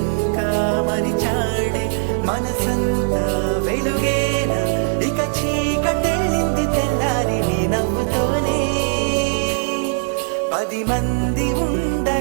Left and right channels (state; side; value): silent; left; 66 dB below the other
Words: మరిచాడే మనసంతా వెలుగేన ఇక చీకటెళ్ళింది తెల్లారి నీ నవ్వుతోనే 10 మంది